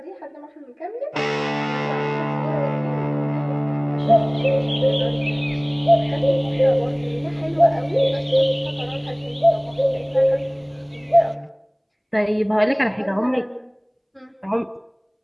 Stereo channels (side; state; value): both; identical; correlation 1.00